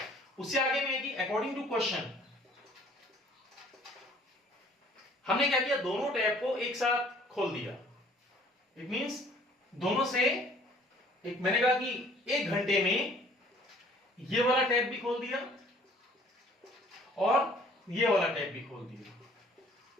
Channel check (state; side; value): normal; both; correlation 0.56